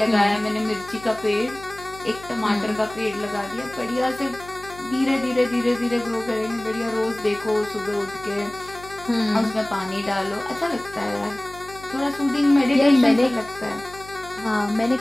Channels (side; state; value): left; noise; hum, 19 dB below the sound